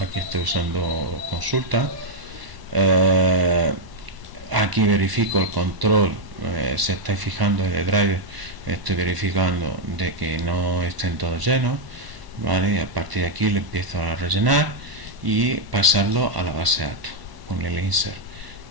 estoy usando consulta. Aquí verifico el control. Si estáis fijando en el driver, estoy verificando de que no estén todos llenos, ¿vale? Y a partir de aquí le empiezo a rellenar y pasarlo a la base de datos con el insert.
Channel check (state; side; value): late; left; 1.0 ms